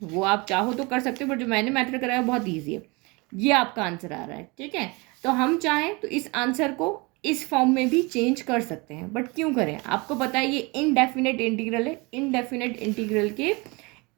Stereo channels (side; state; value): left; quieter; 26.9 dB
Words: वो आप चाहो तो कर सकते हो, बट जो मैंने मेथड कराया बहुत ईजी है। ये आपका आंसर आ रहा है। ठीक है, तो हम चाहें तो इस आंसर को इस फॉर्म में भी चेंज कर सकते हैं, बट क्यों करें? आपको पता है ये इनडेफिनेट इंटीग्रल है, इनडेफिनेट इंटीग्रल के